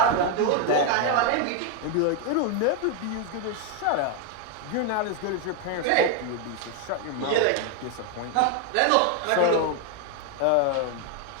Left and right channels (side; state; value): both; different; correlation 0.01